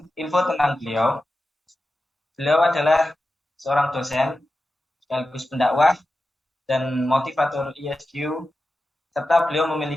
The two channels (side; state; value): both; normal; correlation 0.92